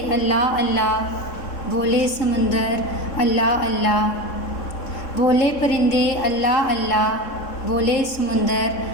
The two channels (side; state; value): right; late; 3.7 ms